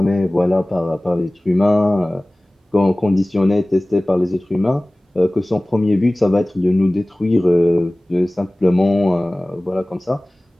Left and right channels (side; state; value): both; normal; correlation 0.98